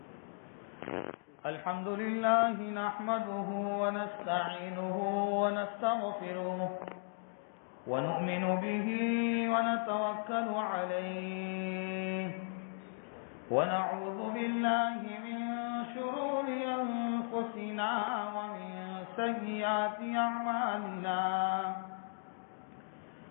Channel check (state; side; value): silent; right; digital silence